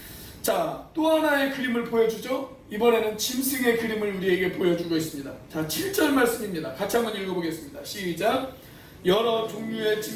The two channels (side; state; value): both; identical; correlation 1.00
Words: 자, 또 하나의 그림을 보여주죠. 이번에는 짐승의 그림을 우리에게 보여주고 있습니다. 자, 7절 말씀입니다. 같이 한번 읽어보겠습니다. 시작. 여러 종류의